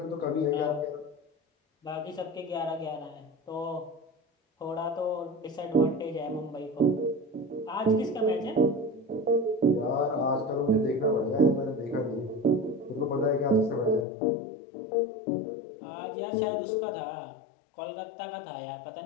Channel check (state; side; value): drops out; right; at 14.1 s